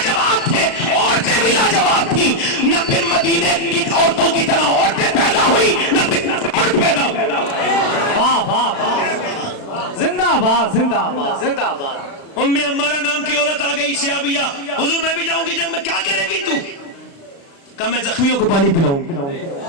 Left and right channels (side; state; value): right; late; 36 ms